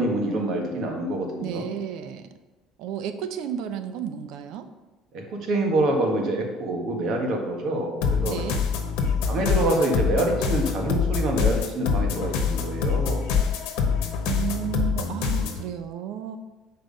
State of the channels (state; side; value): normal; both; correlation 0.51